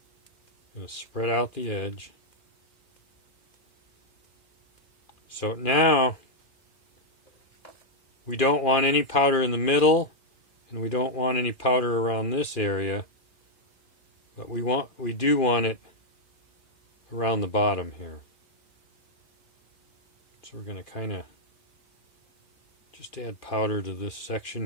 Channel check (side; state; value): right; late; 2.4 ms